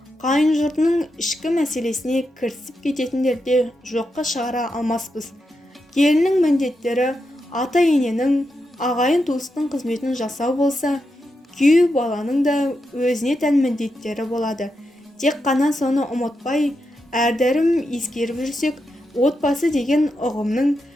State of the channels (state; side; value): normal; both; correlation 0.86